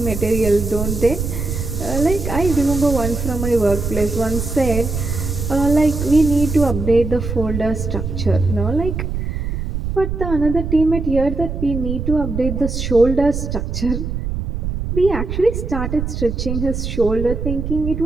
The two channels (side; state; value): right; noise; rumble, 4 dB below the sound